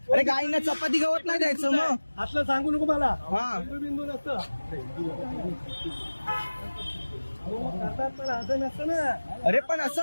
अरे गाईंना चपाती गवत नाही द्यायचं मग. असलं सांगू नको मला. हा. हिंदू बिंदू नसतं. हो, करतात पण असं नसतं ना. अरे पण असं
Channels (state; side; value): inverted; both; correlation -1.00